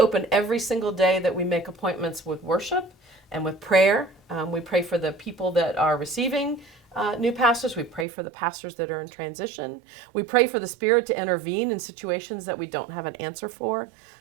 every single day that we make appointments with worship and with prayer. We pray for the people that are receiving new pastors. We pray for the pastors that are in transition. We pray for the Spirit to intervene in situations that we don't have an answer for.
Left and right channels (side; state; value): left; drops out; at 8.1 s